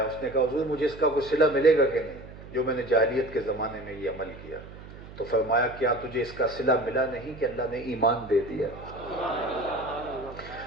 اس نے کہا حضور مجھے اس کا کوئی صلہ ملے گا کہ نہیں جو میں نے جاہلیت کے زمانے میں یہ عمل کیا؟ تو فرمایا کیا تجھے اس کا صلہ ملا نہیں کہ اللہ نے ایمان دے دیا؟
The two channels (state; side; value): noise; right; hum, 16 dB below the sound